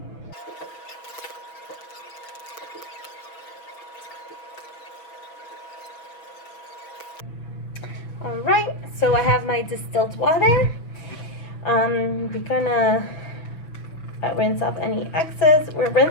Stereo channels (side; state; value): right; late; 6.2 ms